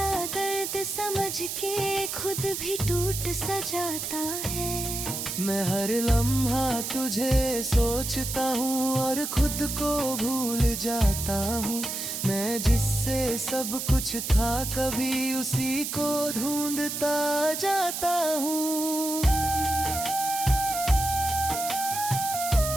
दर्द समझ के खुद भी टूट सा जाता है। मैं हर लम्हा तुझे सोचता हूँ और खुद को भूल जाता हूँ। मैं जिससे सब कुछ था कभी उसी को ढूंढता जाता हूँ।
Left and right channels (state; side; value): noise; right; hiss, 4 dB below the sound